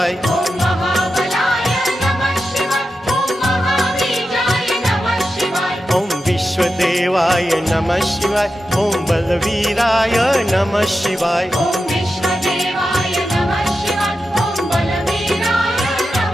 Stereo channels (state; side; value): normal; both; correlation 0.90